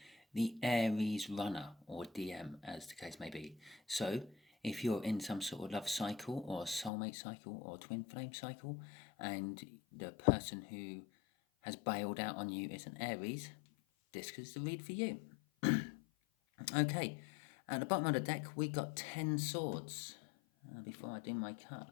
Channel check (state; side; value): drops out; right; at 6.9 s